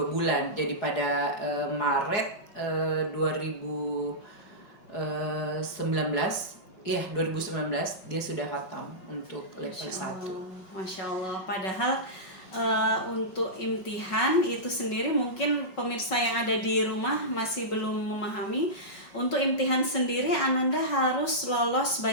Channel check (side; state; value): right; late; 5.4 ms